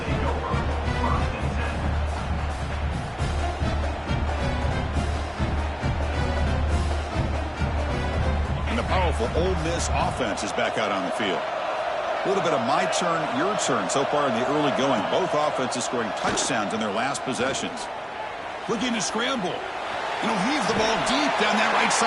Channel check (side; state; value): both; identical; correlation 1.00